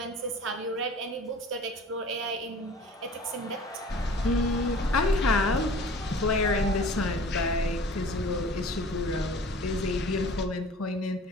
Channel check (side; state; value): both; normal; correlation 0.45